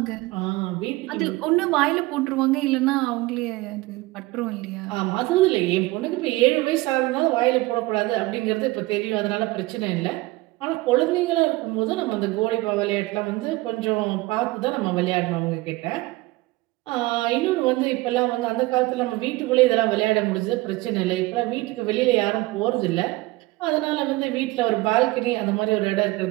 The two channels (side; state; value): left; quieter; 20.5 dB